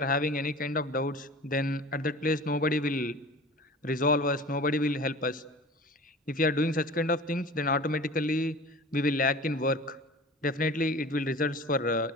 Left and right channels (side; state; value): both; normal; correlation 0.39